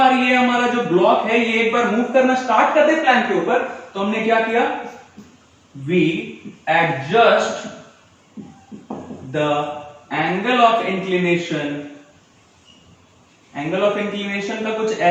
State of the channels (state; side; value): identical; both; correlation 1.00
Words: ये हमारा जो ब्लॉक है ये एक बार मूव करना स्टार्ट कर दे प्लैंक के ऊपर, तो हमने क्या किया, we adjust the angle of inclination. Angle of inclination का कुछ